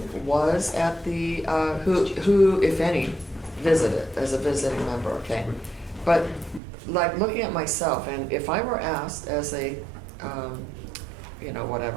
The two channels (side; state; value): left; drops out; at 6.6 s